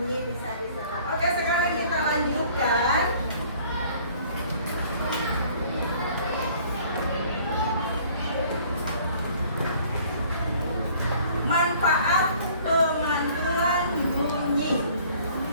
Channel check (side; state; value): both; inverted; correlation -0.55